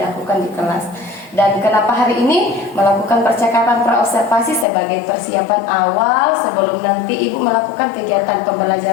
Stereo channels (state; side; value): drops out; right; at 4.7 s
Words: di kelas. Dan kenapa hari ini melakukan percakapan praobservasi sebagai persiapan awal sebelum nanti Ibu melakukan kegiatan